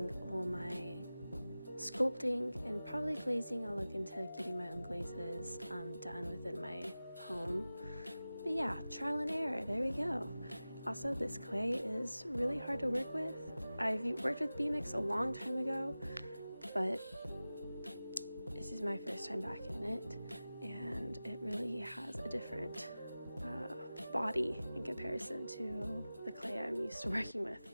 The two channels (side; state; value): both; inverted; correlation -0.96